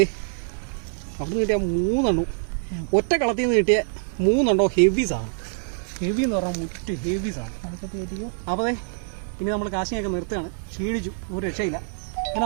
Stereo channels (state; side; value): silent; left; 62 dB below the other